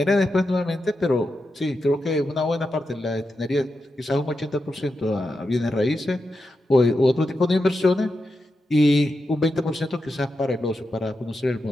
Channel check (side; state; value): both; normal; correlation 0.88